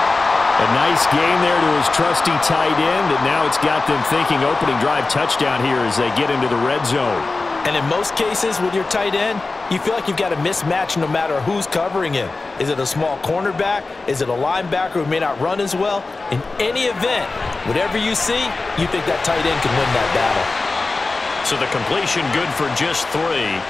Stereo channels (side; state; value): right; quieter; 3.6 dB